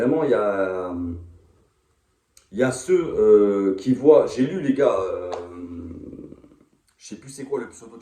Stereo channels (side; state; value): both; identical; correlation 1.00